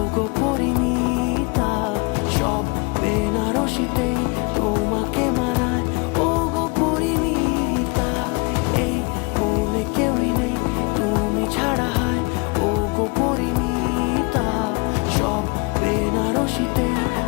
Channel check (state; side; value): quieter; right; 29.6 dB